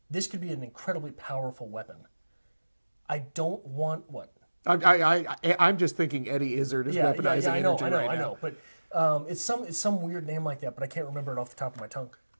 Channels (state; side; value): inverted; both; correlation -1.00